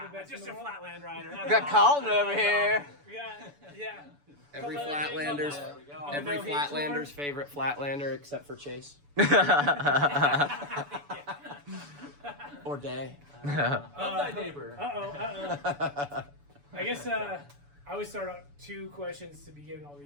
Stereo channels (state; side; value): late; left; 6.9 ms